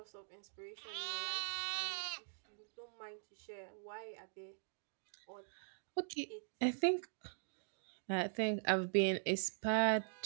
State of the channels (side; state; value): left; silent; digital silence